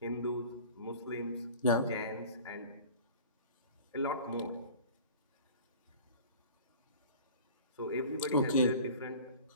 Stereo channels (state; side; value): inverted; both; correlation -0.42